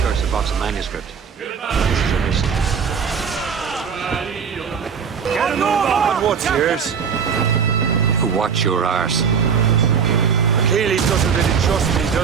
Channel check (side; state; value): left; quieter; 6.7 dB